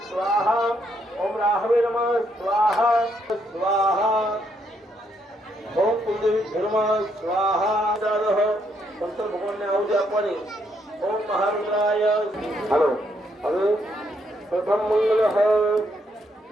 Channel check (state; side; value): normal; both; correlation 0.74